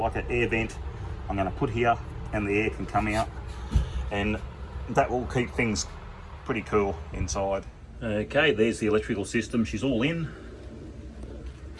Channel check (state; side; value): identical; both; correlation 1.00